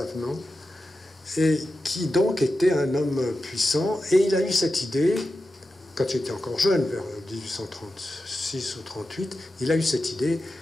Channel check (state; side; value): normal; both; correlation 0.92